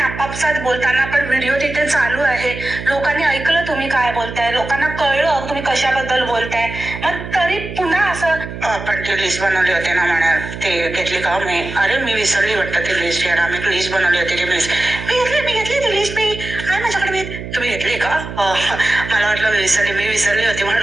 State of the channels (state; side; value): noise; right; hum, 9 dB below the sound